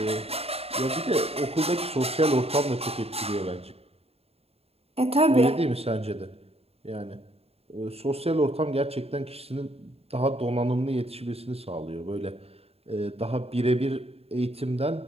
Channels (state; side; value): late; left; 0.29 ms